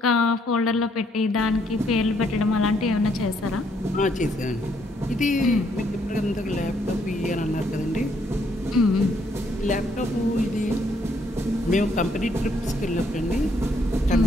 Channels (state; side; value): normal; both; correlation 0.70